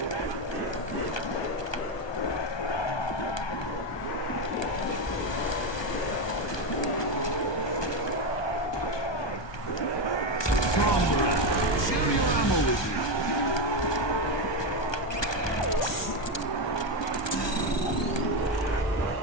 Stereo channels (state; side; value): late; right; 1.2 ms